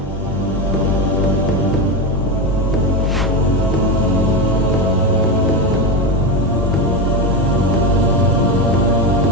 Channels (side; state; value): both; normal; correlation 0.15